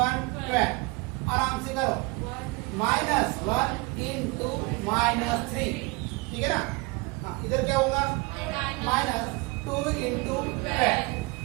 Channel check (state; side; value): quieter; left; 25.7 dB